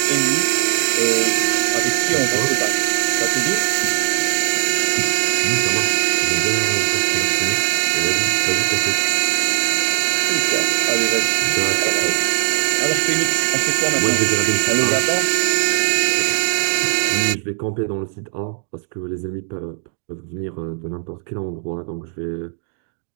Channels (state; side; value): silent; left; 57 dB below the other